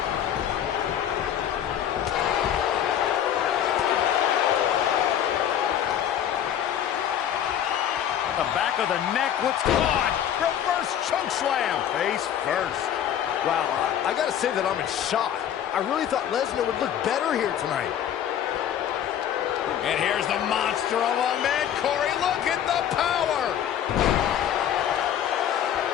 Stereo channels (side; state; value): right; quieter; 10.0 dB